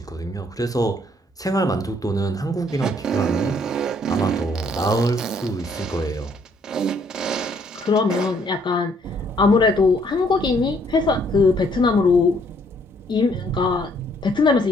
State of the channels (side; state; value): both; normal; correlation 0.66